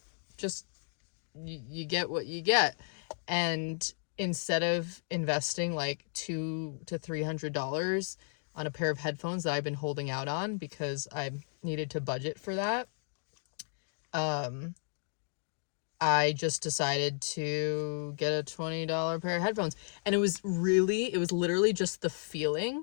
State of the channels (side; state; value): right; silent; digital silence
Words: just you get what you get. And instead of investing like $200 to $300 on a pair of headphones that I've been holding out on because I needed to budget for that, I just decided to get a $20 pair of headphones. And it was literally just the